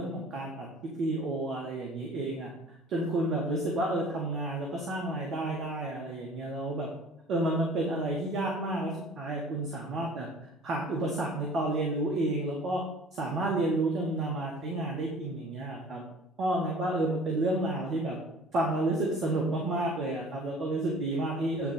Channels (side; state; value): both; normal; correlation 0.47